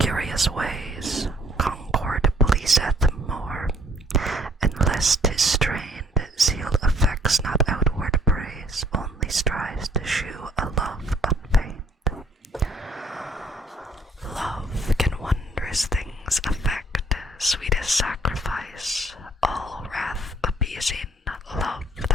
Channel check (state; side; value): normal; both; correlation 0.62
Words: ways, concord pleaseth more, and lest 'tis strained, zeal affects not outward praise, only strives to shew a love unfeigned. Love can wondrous things effect, sweetest sacrifice, all wrath appeasing. Love the